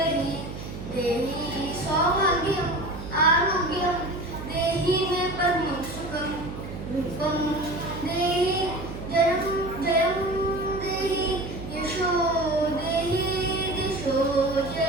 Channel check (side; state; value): right; noise; hum, 10 dB below the sound